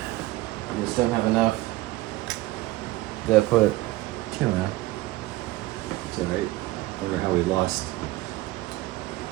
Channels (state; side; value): quieter; left; 18.3 dB